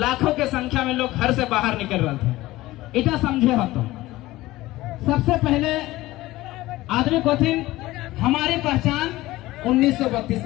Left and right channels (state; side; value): quieter; right; 17.7 dB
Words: के संख्या में लोग घर से बाहर निकल रहे थे। इतना समझे हो तो सबसे पहले आदमी को थी हमारी पहचान 1932